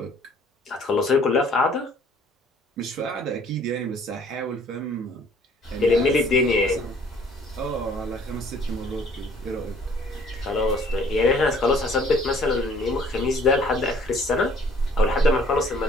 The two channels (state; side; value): normal; both; correlation 0.57